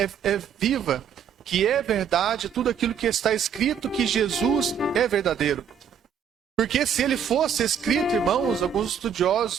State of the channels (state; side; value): quieter; left; 7.7 dB